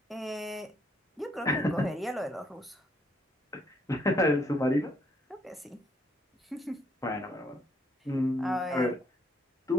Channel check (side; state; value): both; normal; correlation 0.70